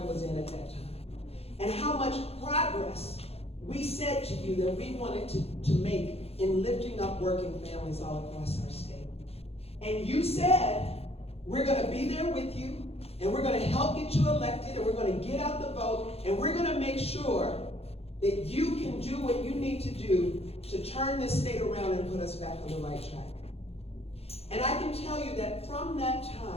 was in at that time. And how much progress we said to you that we wanted to make in lifting up working families all across our state. And you said, we're going to be there with you, and we're going to help get you elected, and we're going to get out the vote, and we're going to make sure that you can do what you need to do to turn this state around and put us back on the right track. And I can tell you that from that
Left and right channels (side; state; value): right; late; 0.29 ms